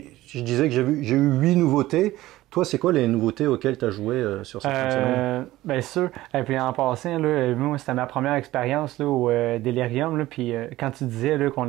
disais que j'ai eu 8 nouveautés. Toi, c'est quoi les nouveautés auxquelles tu as joué sur cette fin de semaine? Bien sûr. Et puis en passant, là, moi, c'était ma première expérience là, au Delirium. Là, puis quand tu disais là, qu'on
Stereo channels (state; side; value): quieter; left; 16.5 dB